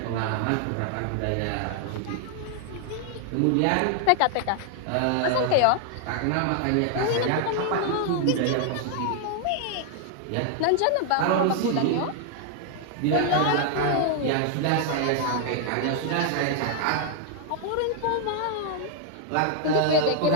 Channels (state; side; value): different; both; correlation 0.00